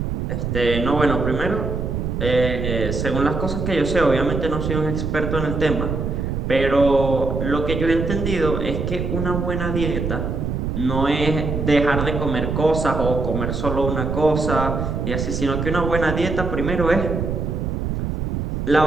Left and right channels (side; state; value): right; noise; rumble, 2 dB below the sound